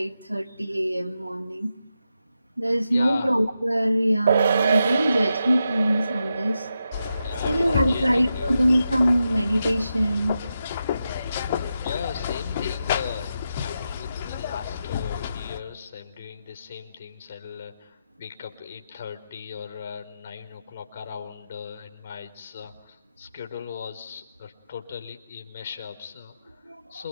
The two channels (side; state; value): both; inverted; correlation -0.87